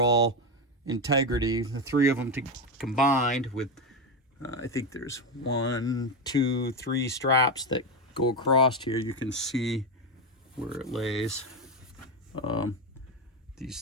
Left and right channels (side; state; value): both; normal; correlation 0.11